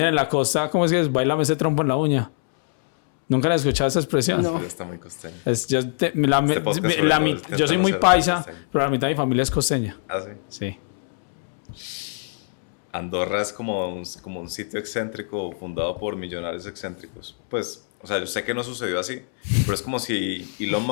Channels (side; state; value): right; silent; 63 dB below the other